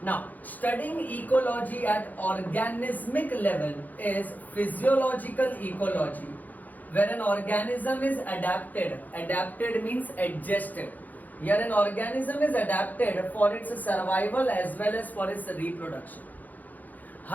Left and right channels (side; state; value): right; late; 0.082 ms